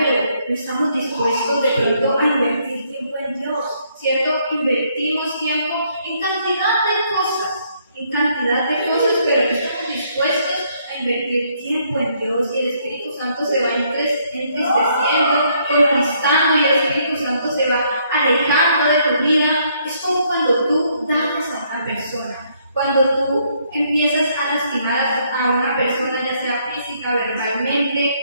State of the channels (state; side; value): inverted; both; correlation -0.69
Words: no estamos dispuestos de pronto a invertir tiempo en Dios, ¿cierto? Invertimos tiempo en cantidad de cosas, pero no estamos dispuestos a invertir tiempo en Dios, y el Espíritu Santo se va entristeciendo, conquistando, y el Espíritu Santo se va alejando de tu vida. Es como cuando tú dañas a una persona. Cuando tú empiezas a lastimar a una persona, ya sea física, verbalmente,